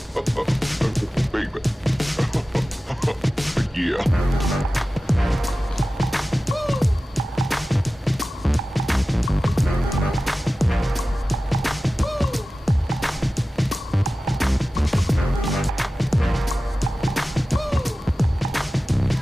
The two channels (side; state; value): both; normal; correlation 0.95